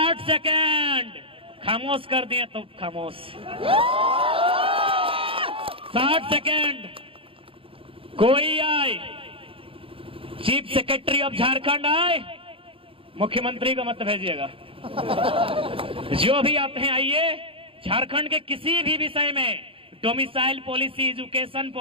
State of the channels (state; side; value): late; left; 0.26 ms